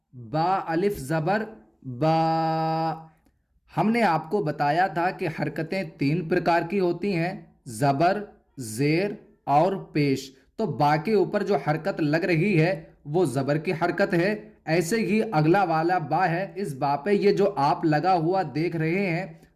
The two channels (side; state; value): both; identical; correlation 1.00